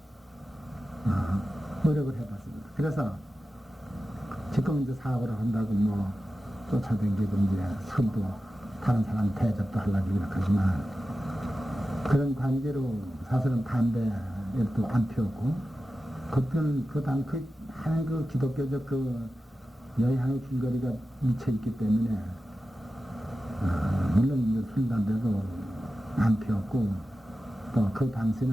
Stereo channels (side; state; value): both; normal; correlation 0.93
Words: 노력을 해봤습니다. 그래서 지금 이제 사업을 한다고 뭐 쫓아다니고 이제 술도 다른 사람 대접도 하려고 이렇게 하지만 그런 관계로 사실은 담배도 안 피웠고 그때는 많은 그 기독교적 그 여향의 줄거리가 미쳐 있기 때문에 물론 이제 술 담배도 안 피웠고 또 그